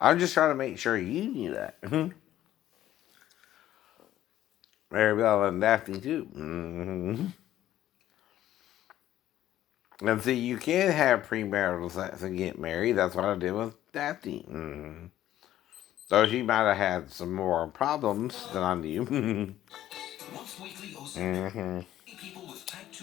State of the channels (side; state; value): right; quieter; 12.9 dB